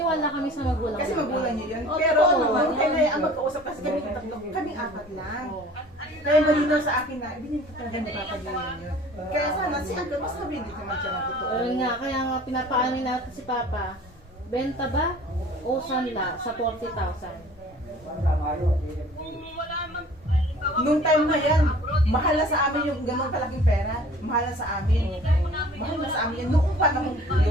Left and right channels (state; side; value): normal; both; correlation 0.48